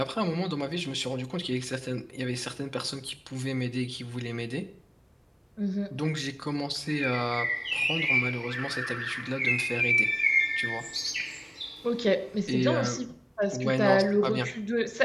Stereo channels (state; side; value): identical; both; correlation 1.00